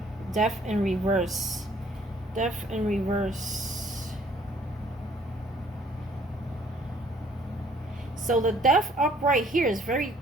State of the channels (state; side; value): normal; both; correlation 0.60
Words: Death in reverse. Death in reverse. So the Death upright here is very